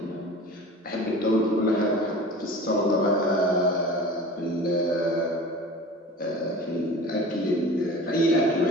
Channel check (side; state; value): both; normal; correlation 0.39